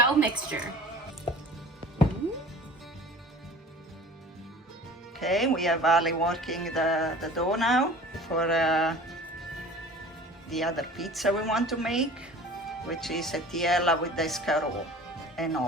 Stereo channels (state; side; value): normal; both; correlation 0.43